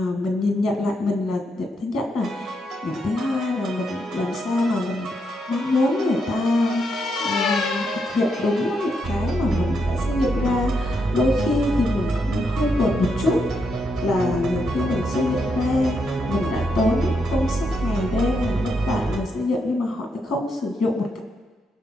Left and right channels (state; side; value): normal; both; correlation 0.80